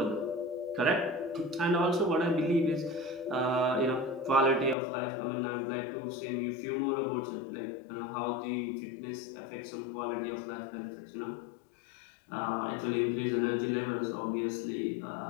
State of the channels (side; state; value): right; drops out; at 4.8 s